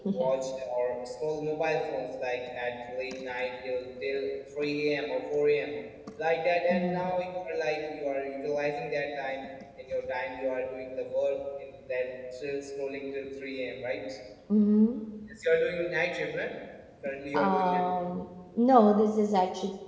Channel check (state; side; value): identical; both; correlation 1.00